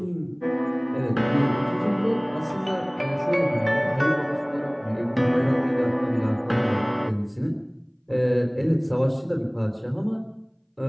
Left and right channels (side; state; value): both; identical; correlation 1.00